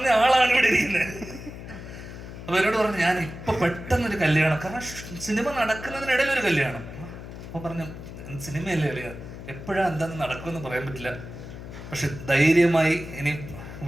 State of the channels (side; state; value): left; noise; hum, 12 dB below the sound